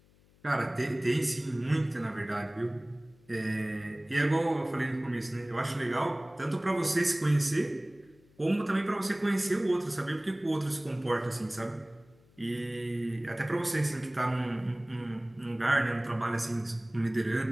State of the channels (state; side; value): noise; left; hum, 30 dB below the sound